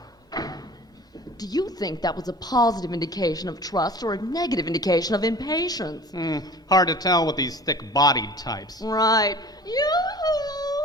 Do you think that was a positive indication of trust or a negative indication of impatience? Hard to tell with these thick-bodied types. Right.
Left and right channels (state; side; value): normal; both; correlation 0.43